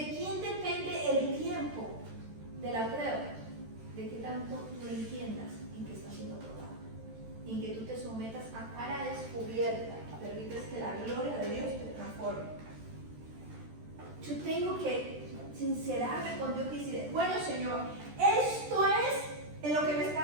quién depende el tiempo de la prueba? De que tanto tú entiendas en que estás siendo probado, en que tú te sometas a cara descubierta, permites que la gloria de Dios te transforme. Yo tengo que sincerarme con Dios y decir: bueno, Señor, esto es en lo que me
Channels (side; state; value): left; late; 13 ms